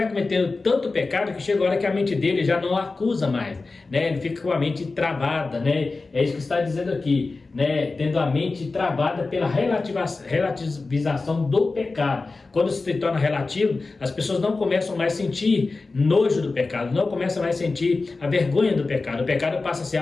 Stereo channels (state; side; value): quieter; right; 3.7 dB